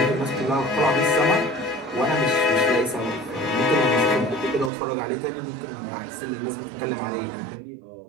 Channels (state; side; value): drops out; left; at 4.7 s